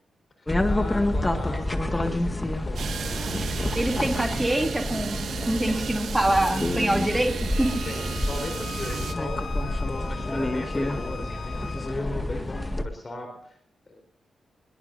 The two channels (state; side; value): normal; both; correlation 0.94